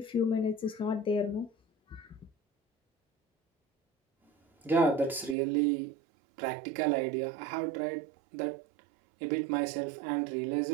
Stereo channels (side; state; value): left; drops out; at 5.4 s